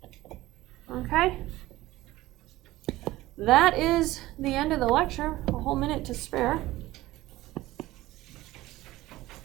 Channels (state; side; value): quieter; left; 17.2 dB